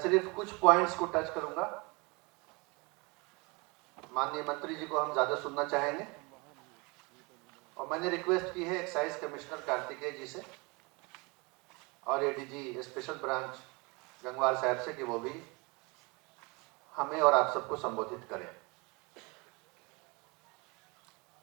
सिर्फ कुछ पॉइंट्स को टच करूंगा। माननीय मंत्री जी को हम ज़्यादा सुनना चाहेंगे और मैंने रिक्वेस्ट की है एक्साइज कमिश्नर कार्तिकेय जी से और एडीजी स्पेशल ब्रांच गंगवार साहब से कि वो भी हमें और आप सबको संबोधित करें।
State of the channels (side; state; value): left; quieter; 27.9 dB